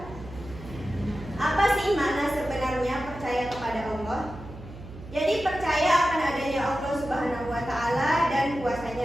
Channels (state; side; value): noise; right; hum, 15 dB below the sound